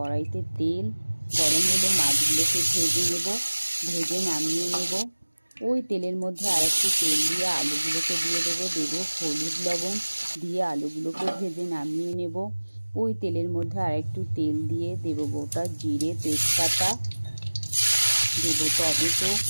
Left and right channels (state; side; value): inverted; both; correlation -1.00